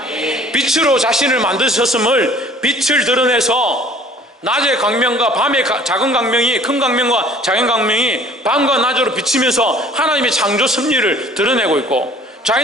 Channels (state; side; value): normal; both; correlation 0.52